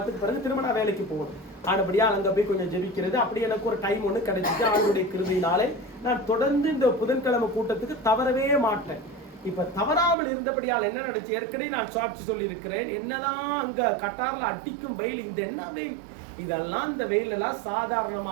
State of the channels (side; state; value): left; drops out; at 10.2 s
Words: பிறகு திரும்ப நான் வேலைக்கு போகணும். ஆனபடியா அங்க போய் கொஞ்சம் ஜெபிக்கிறது, அப்படி எனக்கு ஒரு டைம் ஒன்று கிடைச்சிட்டு ஆண்டுடைய கிருபையினாலே நான் தொடர்ந்து இந்த புதன்கிழமை கூட்டத்துக்கு தவறவே மாட்டேன். இப்ப தவறாமல் இருந்தபடியால் என்ன நடந்துச்சு, ஏற்கனவே நான் சாட்சி சொல்லி இருக்கிறேன். என்னதான் அங்க கட்டார்ல அடிக்கும் வெயில், இந்த என்ன வெயில் இதெல்லாம், இந்த வெயில் எல்லாம்